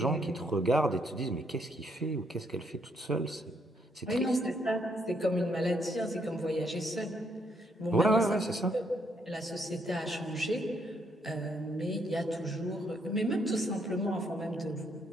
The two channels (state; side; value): normal; both; correlation 0.73